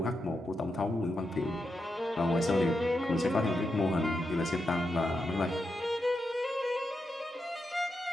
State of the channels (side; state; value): both; normal; correlation 0.86